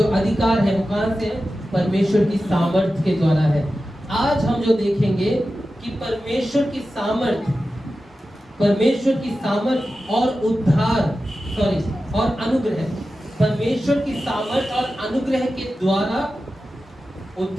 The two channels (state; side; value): normal; both; correlation 0.93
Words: अधिकार है वो कहां से है? परमेश्वर की सामर्थ के द्वारा है। आज हम जो देखेंगे कि परमेश्वर की सामर्थ, परमेश्वर की सामर्थ और और अनुग्रह, परमेश्वर की सामर्थ और अनुग्रह के द्वारा